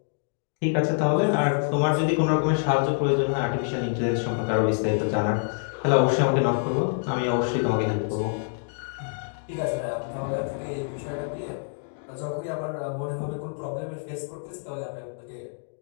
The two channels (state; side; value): silent; right; digital silence